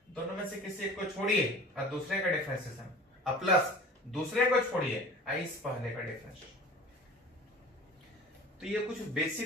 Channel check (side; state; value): both; normal; correlation 0.41